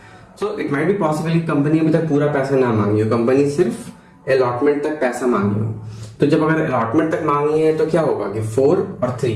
So it might be possible company अभी तक पूरा पैसा ना मांगी हो, कंपनी सिर्फ अलॉटमेंट तक पैसा मांगी हो। तो जब अगर अलॉटमेंट तक मांगी है तो क्या होगा कि 4 और 3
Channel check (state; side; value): identical; both; correlation 1.00